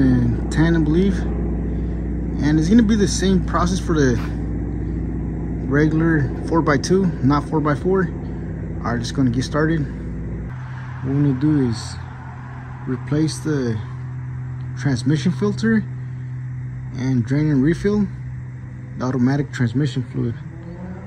I believe. And it's gonna be the same process for the regular 4x2, not 4x4. All right, just gonna get started. What we're gonna do is replace the transmission filter and drain and refill the automatic transmission fluid.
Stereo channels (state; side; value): identical; both; correlation 1.00